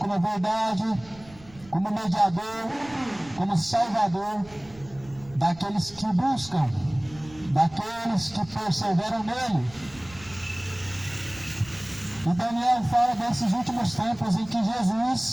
a verdade, como mediador, como Salvador daqueles que buscam, daqueles que perseveram nele. E Daniel fala desses últimos tempos em que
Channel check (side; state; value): right; noise; rumble, 22 dB below the sound